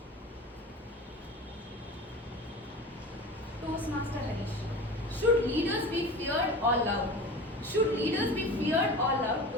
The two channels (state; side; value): normal; both; correlation 0.34